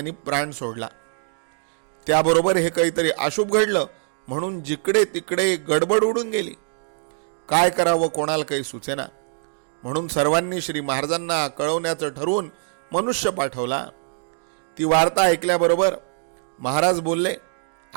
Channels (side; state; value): left; silent; digital silence